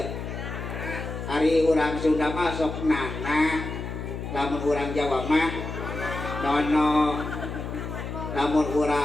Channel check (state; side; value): noise; left; hum, 6 dB below the sound